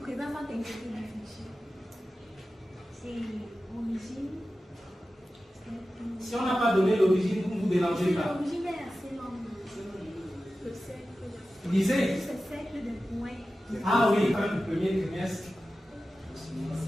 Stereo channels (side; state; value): both; normal; correlation 0.94